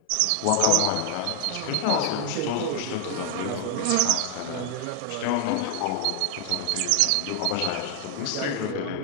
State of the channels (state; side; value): different; both; correlation 0.00